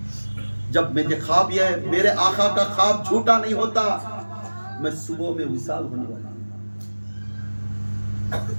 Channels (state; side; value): inverted; both; correlation -1.00